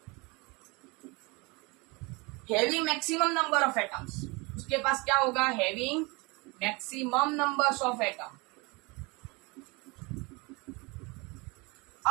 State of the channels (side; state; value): left; quieter; 26.9 dB